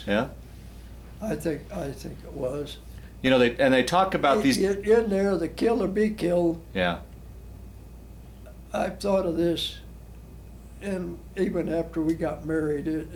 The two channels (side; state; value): both; identical; correlation 1.00